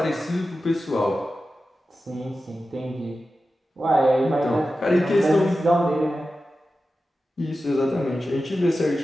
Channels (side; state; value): both; normal; correlation 0.93